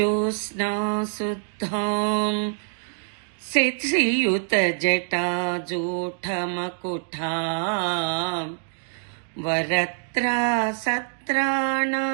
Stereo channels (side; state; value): left; silent; 62 dB below the other